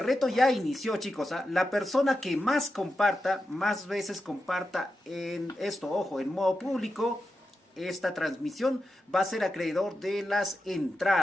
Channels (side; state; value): both; normal; correlation 0.90